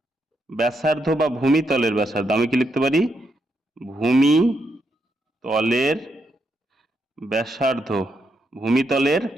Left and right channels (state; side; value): normal; both; correlation 0.80